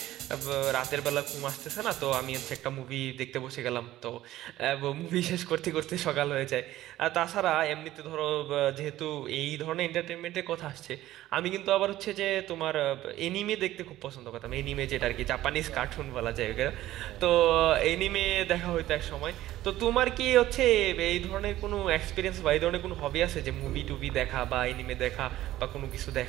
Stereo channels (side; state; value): left; quieter; 14.8 dB